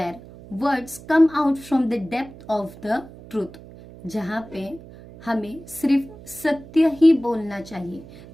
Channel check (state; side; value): noise; right; hum, 18 dB below the sound